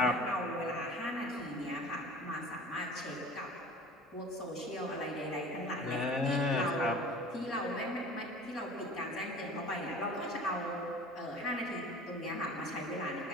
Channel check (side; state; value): both; normal; correlation 0.42